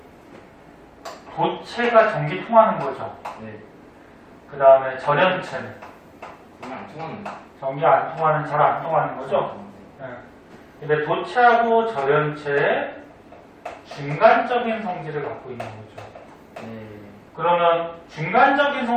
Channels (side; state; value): both; identical; correlation 1.00